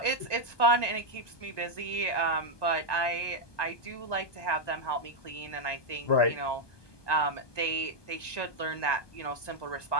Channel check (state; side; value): late; right; 1.2 ms